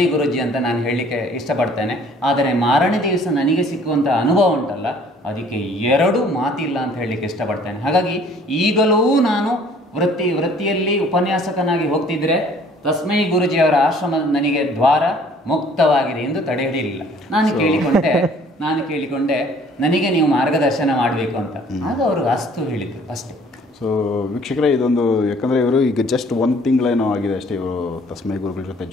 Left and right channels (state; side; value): normal; both; correlation 0.56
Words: ಗುರುಜಿ ಅಂತ ನಾನು ಹೇಳಲಿಕ್ಕೆ ಇಷ್ಟಪಡ್ತೇನೆ. ಆದರೆ ಮಾರನೇ ದಿವಸ ನನಗೆ ಸಿಕ್ಕುವಂಥ ಅನುಭವ ಉಂಟಲ್ಲ, ಅದಕ್ಕೆ ಎರಡು ಮಾತಿಲ್ಲ ಅಂತ ಹೇಳಲಿಕ್ಕೆ ಇಷ್ಟಪಡ್ತೇನೆ. ಹಾಗಾಗಿ ಈಗಲೂ ನಾನು ವೃತ್ತಿಯಲ್ಲಿ ಉಪನ್ಯಾಸಕನಾಗಿ ಹೋಗ್ತಿದ್ರೆ ತಸ್ಮೈ ಗುರುಜಿಯವರ ಆಶ್ರಮ ನನಗೆ ದ್ವಾರ ಮುಕ್ತವಾಗಿದೆ ಎಂದು ತಡೆ ಹಿಡಿಯಲಿಲ್ಲ. ನಾನು ಕೇಳಿಕೊಂಡೆ ನನಗೆ ನೀವು ಮಾರ್ಗದರ್ಶನ ಮಾಡಬೇಕು ಅಂತ. ಆಗ ಅವರು ಅಸ್ತು ಹೇಳಿದ್ರು ಅಷ್ಟೇ. ಸೊ ವೀಕ್ಷಕರೇ, ಇದೊಂದು ಯಾಕಂದರೆ ಇವರು ಈಗ ಜಸ್ಟ್ 1 ತಿಂಗಳೇನೋ ಆಗಿದೆ ಅಷ್ಟೇ ಇವರು ತಸ್ಮೈ ಗುರುಗಳ ಜೊತೆ